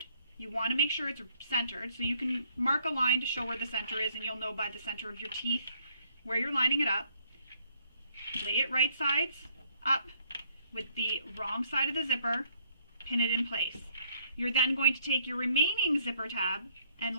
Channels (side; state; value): both; inverted; correlation -0.66